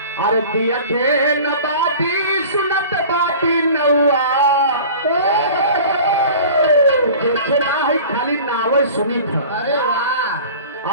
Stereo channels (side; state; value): both; inverted; correlation -0.41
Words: अरे दिया के न बाती सुनत बाती नौआ देखे ना है खाली नावे सुनी था। अरे